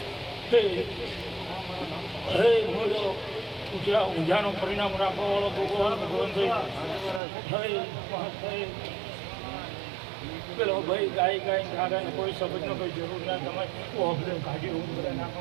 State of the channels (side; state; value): left; drops out; at 7.2 s